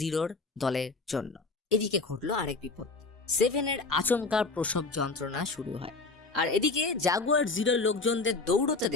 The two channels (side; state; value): right; quieter; 3.7 dB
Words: দলের জন্য। এদিকে ঘটলো আরেক বিপদ। সেভেনের আচমকা প্রসব যন্ত্রণা শুরু হয়, আর এদিকে জাগুয়ার জিরোর লোকজনদের দৌড়তে